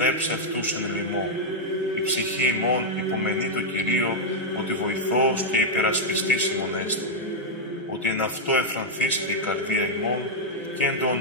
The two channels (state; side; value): normal; both; correlation -0.03